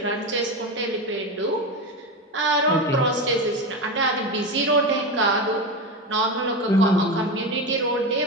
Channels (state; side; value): normal; both; correlation 0.19